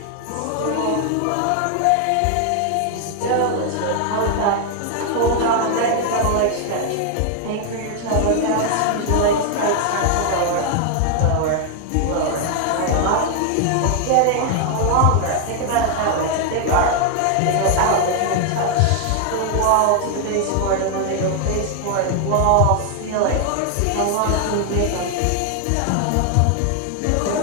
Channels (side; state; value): both; different; correlation 0.00